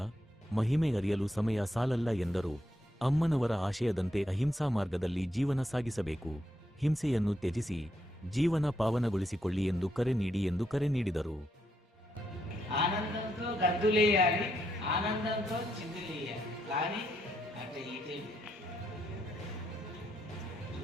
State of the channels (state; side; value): normal; both; correlation 0.79